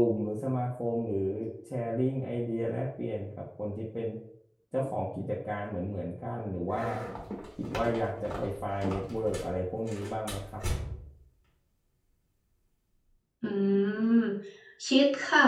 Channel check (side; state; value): both; identical; correlation 1.00